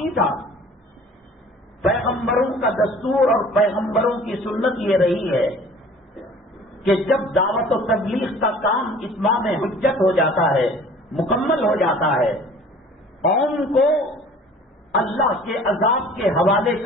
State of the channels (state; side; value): normal; both; correlation 0.49